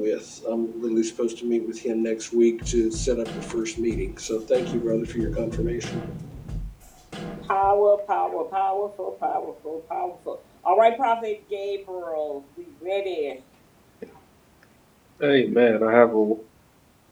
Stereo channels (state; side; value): identical; both; correlation 1.00